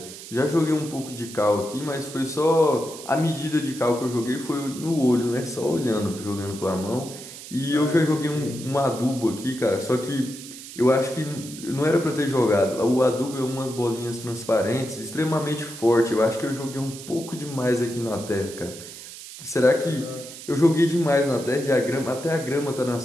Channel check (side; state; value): right; noise; hiss, 14 dB below the sound